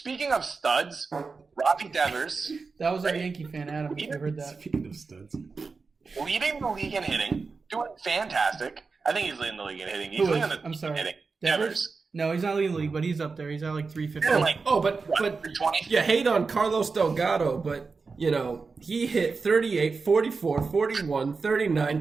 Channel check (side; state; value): left; quieter; 4.5 dB